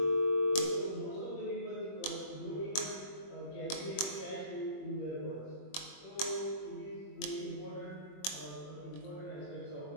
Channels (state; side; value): late; right; 21 ms